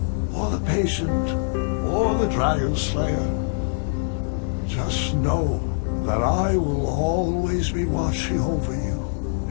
or the Patient, or the Dragon Slayer. Just know that I will always be watching over you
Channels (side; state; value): right; silent; digital silence